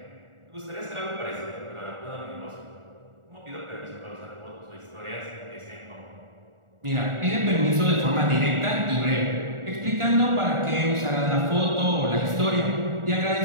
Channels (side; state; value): left; late; 1.4 ms